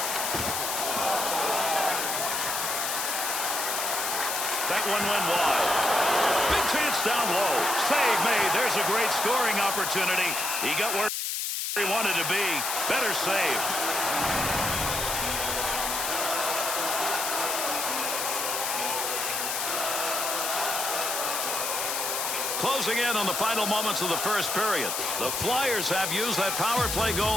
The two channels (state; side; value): noise; left; hiss, 1 dB below the sound